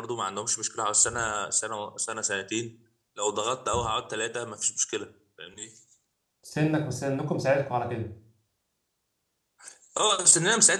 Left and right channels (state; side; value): identical; both; correlation 1.00